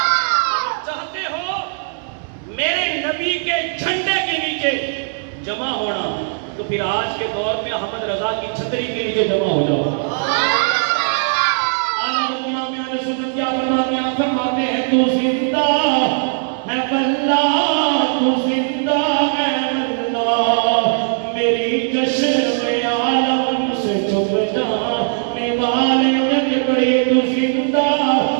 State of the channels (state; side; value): silent; left; 60 dB below the other